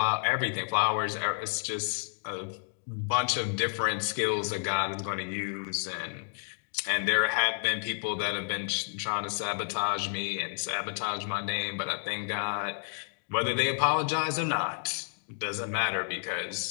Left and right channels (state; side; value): silent; right; 56 dB below the other